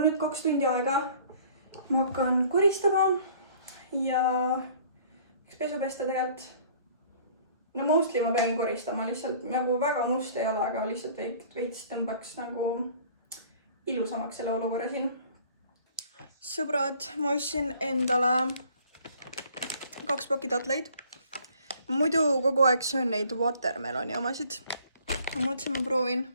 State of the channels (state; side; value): inverted; both; correlation -0.54